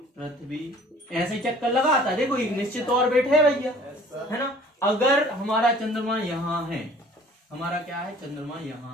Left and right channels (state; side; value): normal; both; correlation 0.51